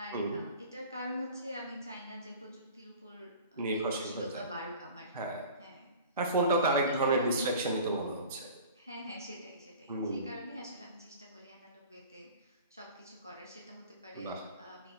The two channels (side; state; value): both; inverted; correlation -0.42